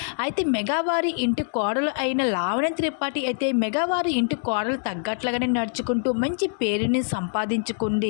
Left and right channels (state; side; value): silent; right; 61 dB below the other